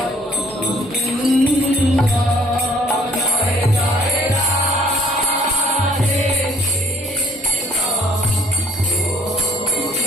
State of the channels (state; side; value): normal; both; correlation 0.59